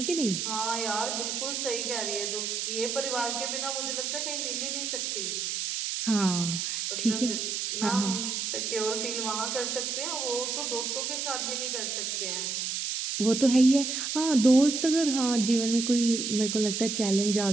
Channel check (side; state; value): right; noise; hiss, 2 dB below the sound